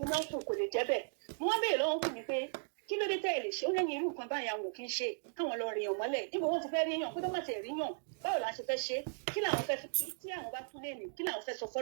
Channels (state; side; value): silent; left; digital silence